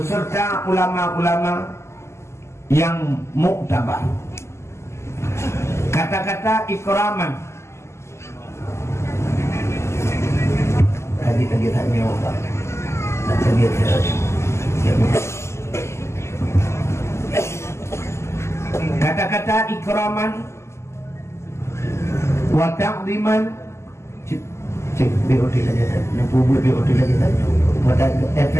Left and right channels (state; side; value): late; right; 0.13 ms